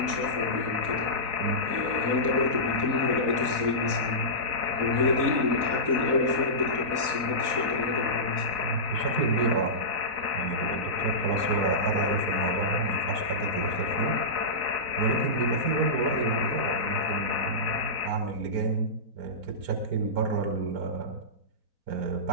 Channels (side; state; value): left; late; 4.0 ms